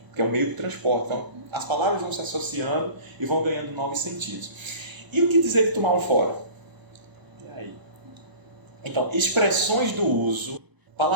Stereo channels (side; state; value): left; late; 1.0 ms